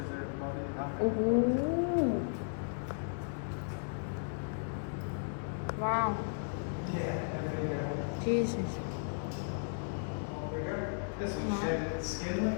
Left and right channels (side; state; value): right; silent; digital silence